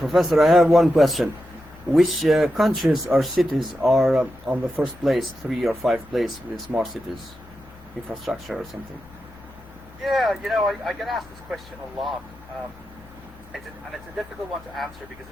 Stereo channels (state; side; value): normal; both; correlation 0.89